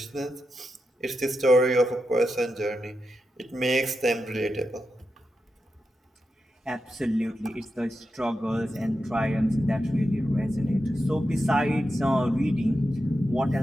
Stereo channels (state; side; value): normal; both; correlation 0.88